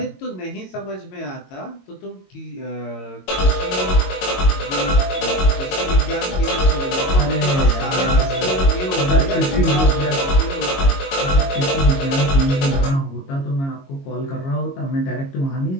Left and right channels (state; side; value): late; right; 22 ms